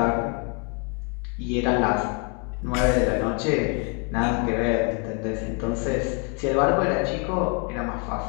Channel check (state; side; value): quieter; right; 35.2 dB